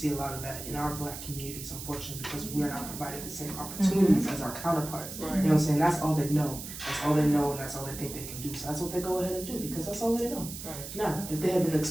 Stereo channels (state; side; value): noise; right; hiss, 10 dB below the sound